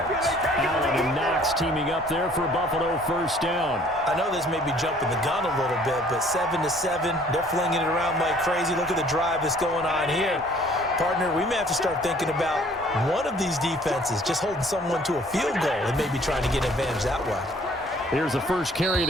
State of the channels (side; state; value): both; normal; correlation 0.57